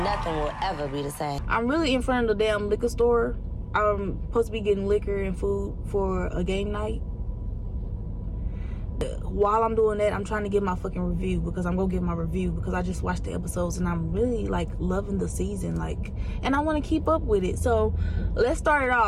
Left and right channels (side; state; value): both; identical; correlation 1.00